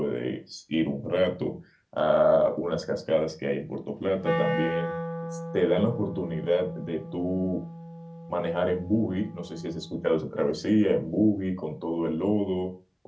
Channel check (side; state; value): both; identical; correlation 1.00